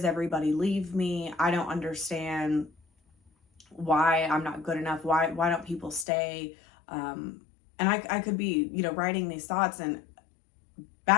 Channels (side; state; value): right; drops out; at 6.1 s